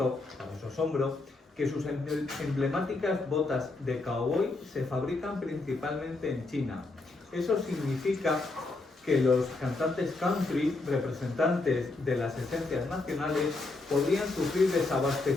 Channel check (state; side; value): quieter; right; 3.3 dB